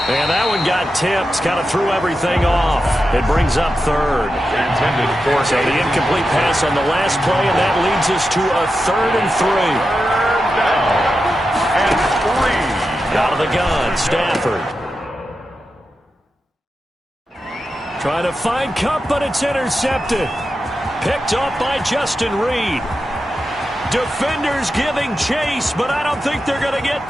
And that one got tipped, kind of threw everything off. It brings up 3rd. So the incomplete pass on the last play, and that leads us to a 3rd and 3. Out of the gun, Stafford. Trying to find Cup, but it's intercepted. Picked up by Justin Reed. Defenders giving chase, but I don't think they're going to get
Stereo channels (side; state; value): both; normal; correlation 0.90